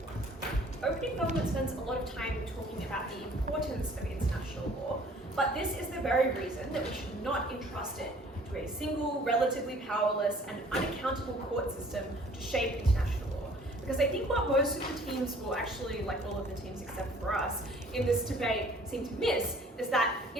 Opening government spends a lot of time talking about the importance of international law, but this is the very reason that we should not entrust it to a single, relatively powerless and unaccountable court system to shape international law. Because I think what most of the teams, well actually like all of the teams except for us, in this debate seem to miss is that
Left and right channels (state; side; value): normal; both; correlation 0.54